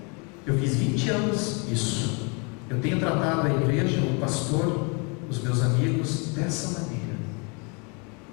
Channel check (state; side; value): quieter; right; 33.1 dB